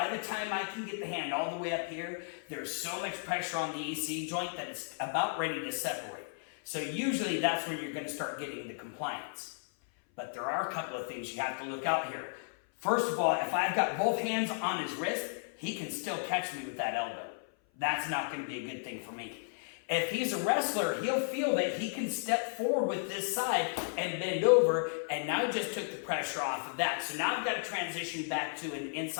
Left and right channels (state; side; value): silent; right; 55 dB below the other